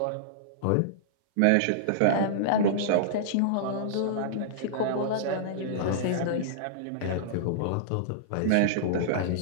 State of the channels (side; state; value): both; different; correlation -0.02